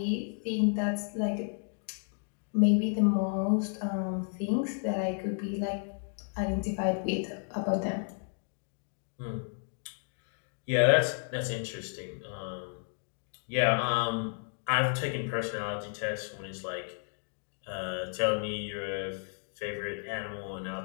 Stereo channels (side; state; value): right; silent; 56 dB below the other